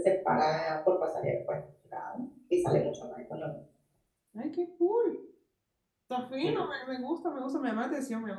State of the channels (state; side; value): identical; both; correlation 1.00